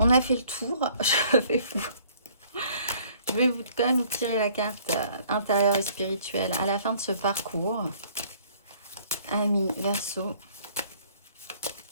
a fait le tour. Je vais quand même vous tirer la carte intérieure et spirituelle à la fin de ce parcours. Amis, Verseau.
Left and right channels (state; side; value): inverted; both; correlation -0.58